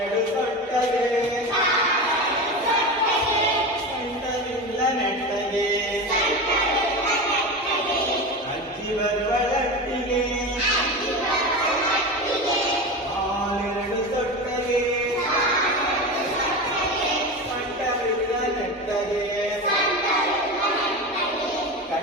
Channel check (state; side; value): normal; both; correlation 0.24